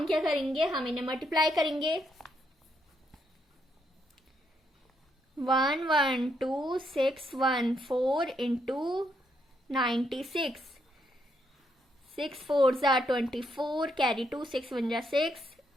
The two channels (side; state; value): both; normal; correlation 0.76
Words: क्या करेंगे, हम इन्हें मल्टीप्लाई करेंगे. 112,614 इंटू 96. 6 4 जा 24, कैरी 2, 6 1 जा 6,